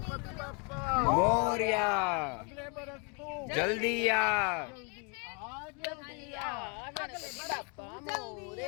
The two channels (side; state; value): right; quieter; 32.5 dB